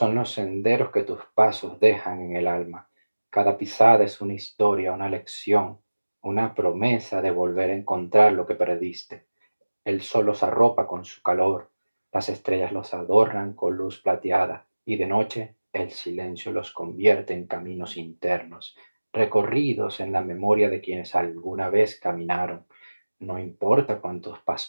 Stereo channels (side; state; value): both; inverted; correlation -1.00